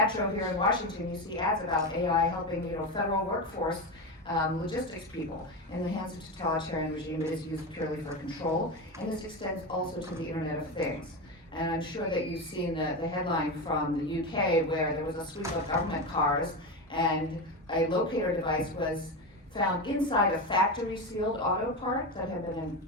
here in Washington, you see ads about AI helping, federal workforce, logistics people. In the hands of totalitarian regime, it is used purely for control, and this extends also to the Internet of Things. And I'm sure that you've seen the headline from the UK where there was a sweep of government cars and a locator device was found inside a factory-sealed auto part that had been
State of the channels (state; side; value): normal; both; correlation 0.18